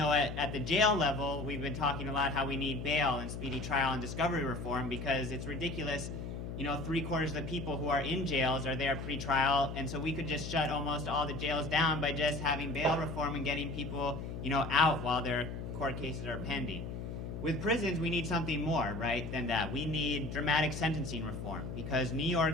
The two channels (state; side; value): noise; left; hum, 7 dB below the sound